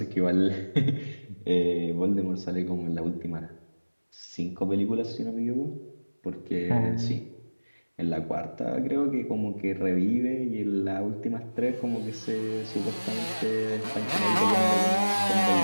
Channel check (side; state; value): both; inverted; correlation -1.00